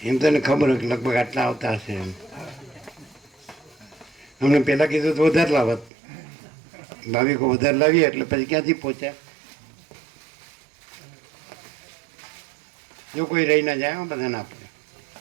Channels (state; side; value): drops out; left; at 5.9 s